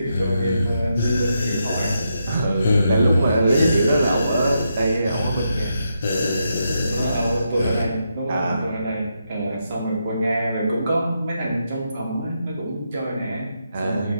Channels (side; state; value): both; inverted; correlation -0.82